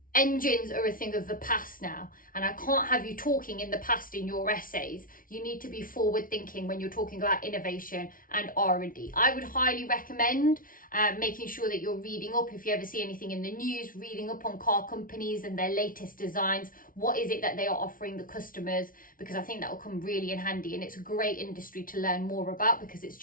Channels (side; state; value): right; late; 0.40 ms